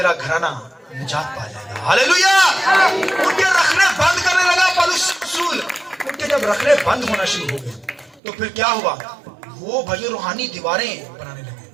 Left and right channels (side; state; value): left; drops out; at 8.2 s